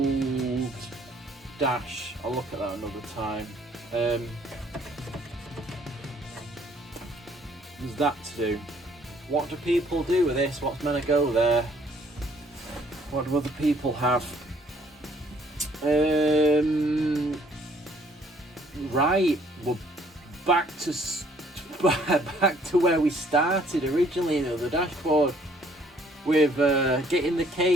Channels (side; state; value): both; normal; correlation 0.62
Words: dash. I'll look at that another time. There's that to do. What do people do with this? What's meant to go there? What do other people have? Right, we're back to where we started originally, you know, the dashboard, with getting the